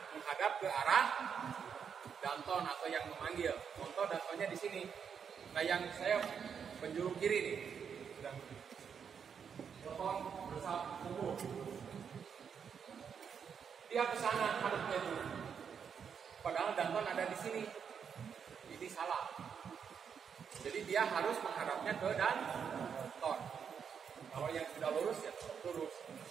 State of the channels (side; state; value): left; quieter; 7.1 dB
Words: menghadap ke arah danton atau yang memanggil. Contoh dantonnya di sini. Nah yang saya penjuru kiri nih. Danton bersab kumpul. Dia ke sana hadapnya dulu. Padahal danton ada di sini. Ini salah. Jadi dia harus menghadapnya ke danton. Kalau yang sudah lurus ya lurus.